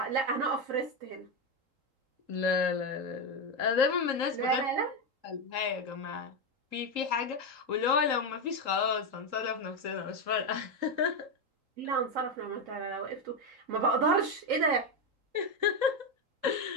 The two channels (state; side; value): late; left; 3.8 ms